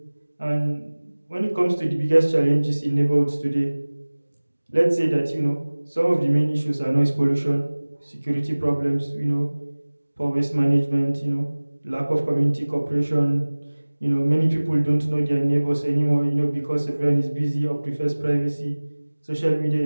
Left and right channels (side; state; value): both; inverted; correlation -1.00